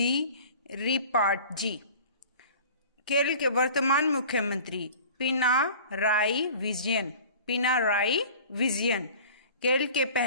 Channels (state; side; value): inverted; both; correlation -0.42